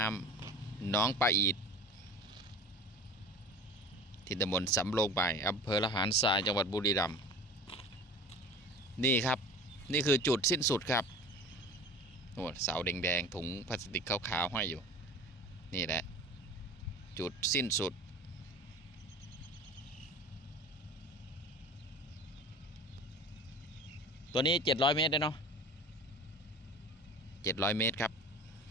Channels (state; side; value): normal; both; correlation 0.38